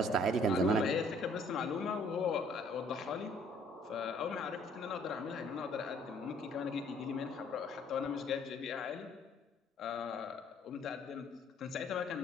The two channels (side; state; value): both; normal; correlation 0.60